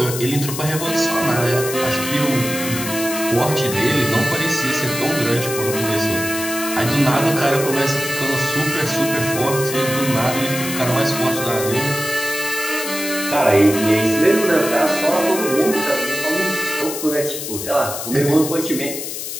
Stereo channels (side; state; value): left; noise; hiss, 6 dB below the sound